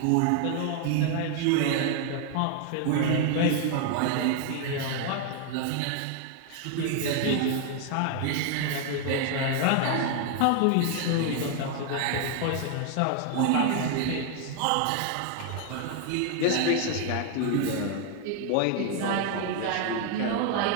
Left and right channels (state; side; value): different; both; correlation 0.00